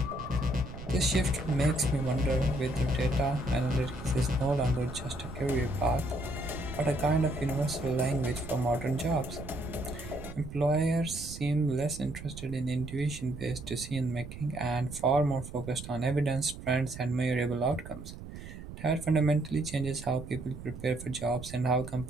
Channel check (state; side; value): noise; right; rumble, 12 dB below the sound